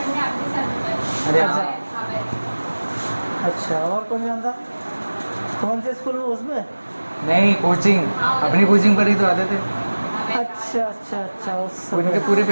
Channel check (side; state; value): both; inverted; correlation -1.00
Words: अरे अच्छा अच्छा, और कौन जानता? कौन से स्कूल में? उसमें? नहीं, कोचिंग, अपनी कोचिंग पर ही तो आते थे। अच्छा अच्छा अच्छा, उस उनके पूरी